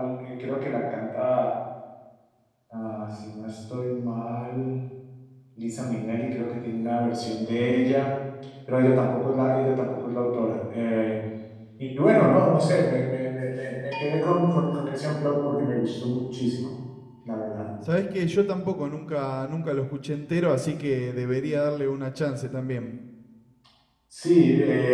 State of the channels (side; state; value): both; identical; correlation 1.00